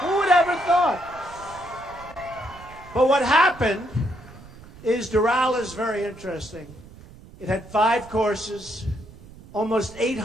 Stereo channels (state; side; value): noise; right; rumble, 19 dB below the sound